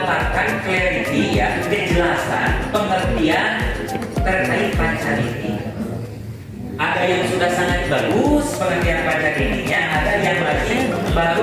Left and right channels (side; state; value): both; identical; correlation 1.00